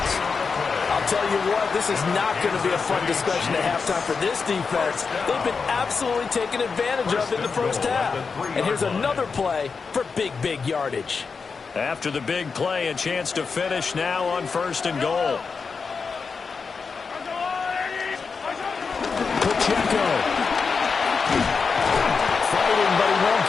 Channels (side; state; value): right; quieter; 5.1 dB